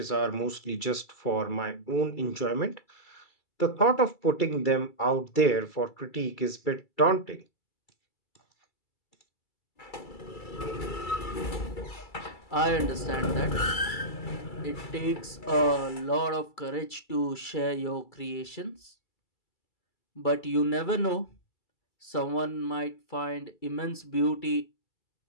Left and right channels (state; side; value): late; right; 2.3 ms